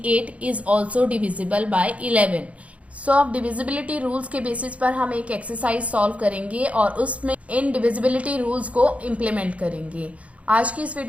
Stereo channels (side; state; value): left; late; 0.065 ms